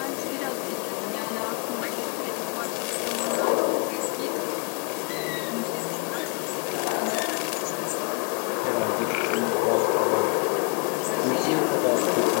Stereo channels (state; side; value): quieter; right; 34.7 dB